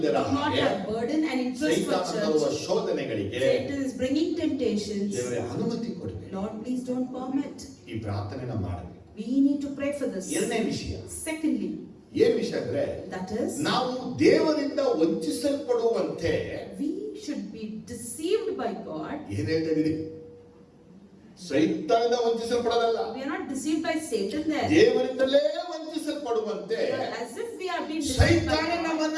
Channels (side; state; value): both; identical; correlation 1.00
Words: do not ಹಾಗೆ, have burden and interest for ಸೈತಾನ ತರುವ church. ಶೋಧನೆಗಳಿಗೆ Satan is bringing temptations. ದೇವರೇ ಅನುಮತಿ ಕೊಡಬೇಡಿ. Lord, please don't permit. ಈ ಪ್ರಾರ್ಥನೆನ ಮಾಡಬೇಕು. We need to pray for this. ಎರಡನೇ ವಿಷಯ, Secondly, ಏನ್ ವಿಷಯ ಅಂದ್ರೆ, that is, ನಾವು ದೇವರಿಂದ ವಂಚಿಸಲ್ಪಡುವಂತೆ we should be deceived by God. ಏನ್ ಹೇಳ್ತಾ ಇದೀರಿ? ಸೈತಾನದಿಂದ ವಂಚಿಸಲ್ಪಡೋದಲ್ಲ, We are not deceived by Satan there. ದೇವರಿಂದಲೇ ವಂಚಿಸಲ್ಪಡುವಂತೆ As if we are being deceived by ಸೈತಾನ God. ನಮ್ಮನ್ನ